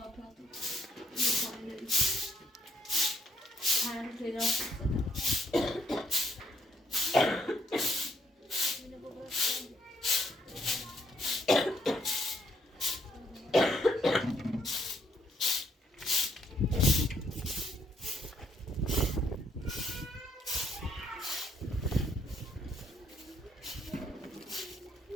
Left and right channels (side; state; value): both; normal; correlation 0.70